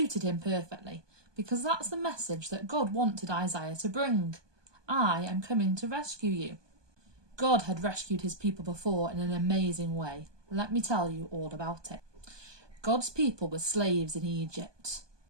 him perfectly, because that's the message that God wanted Isaiah to bring. I am coming to rescue you. God had rescued his people before in an amazing way. Let me tell you all about it. God's people were slaves in Egypt.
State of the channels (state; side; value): late; left; 1.2 ms